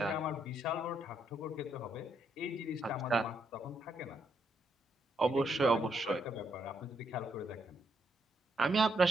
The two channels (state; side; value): normal; both; correlation 0.76